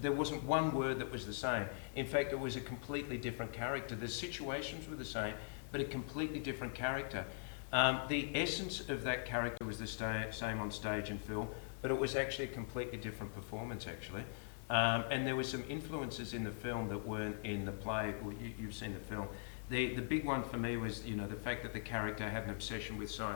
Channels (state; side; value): silent; right; 50 dB below the other